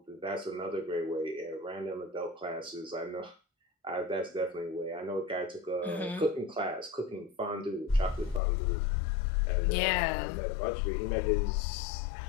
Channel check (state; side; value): drops out; right; at 8.4 s